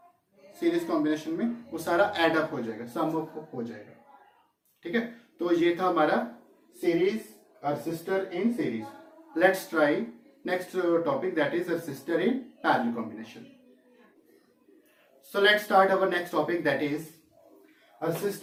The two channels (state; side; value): identical; both; correlation 1.00